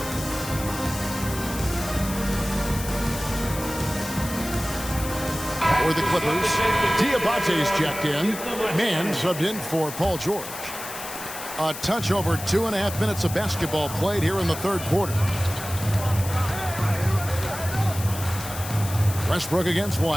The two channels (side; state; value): left; noise; hiss, 10 dB below the sound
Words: For the Clippers, Diabate's checked in. Mann subbed in for Paul George. A touch over 2.5 minutes of basketball played here in the 3rd quarter. Westbrook against